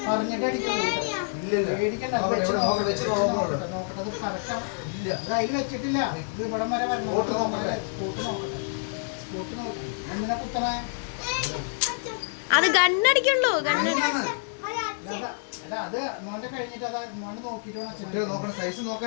വെച്ചിട്ടില്ല ഇത് ഇവിടം വരെ എന്തിനാ കുത്തണേ അത് ഗണ്ണടിക്കുള്ളൂ അത് മോന്റെ കഴിഞ്ഞിട്ട് അത് മോന് നോക്കിട്ട് നോക്കണ സൈസ്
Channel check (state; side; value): silent; right; digital silence